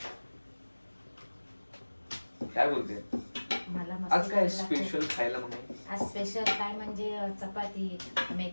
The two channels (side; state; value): both; inverted; correlation -1.00